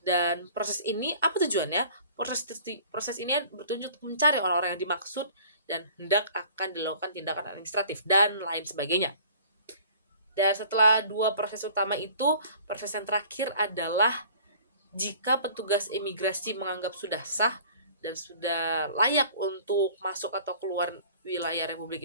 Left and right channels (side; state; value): both; inverted; correlation -0.49